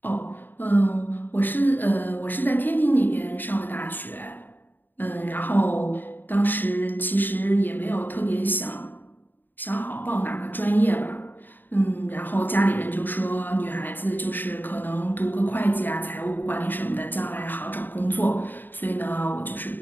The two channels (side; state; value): right; late; 0.091 ms